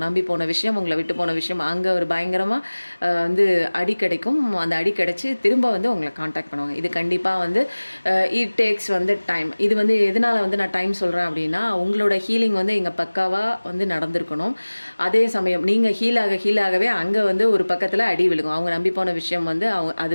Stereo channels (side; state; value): both; inverted; correlation -1.00